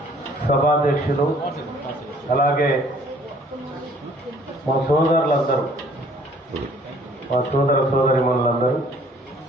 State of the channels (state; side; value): normal; both; correlation 0.58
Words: సభాధ్యక్షులు, అలాగే మా సోదరులందరూ మా సోదర సోదరిమణులందరూ